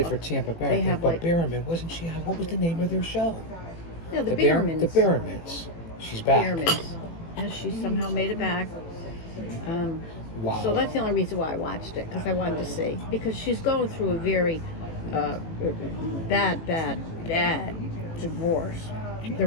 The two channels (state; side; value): late; right; 18 ms